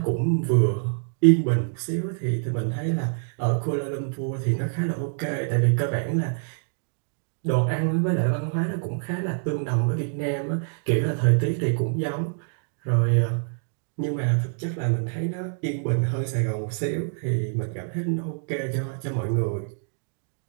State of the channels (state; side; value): silent; left; digital silence